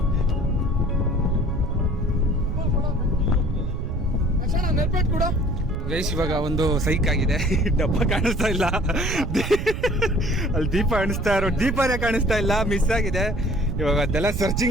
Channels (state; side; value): noise; right; rumble, 3 dB below the sound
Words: ಗೈಸ್, ಇವಾಗ ಒಂದು ಸೈಕ್ ಆಗಿದೆ. ಡಬ್ಬ ಕಾಣಿಸ್ತಾ ಇಲ್ಲ, ಅಲ್ಲಿ ದೀಪ ಕಾಣಿಸ್ತಾ ಇರೋ ದೀಪನೇ ಕಾಣಿಸ್ತಾ ಇಲ್ಲ, ಮಿಸ್ ಆಗಿದೆ. ಇವಾಗ ಅದೆಲ್ಲ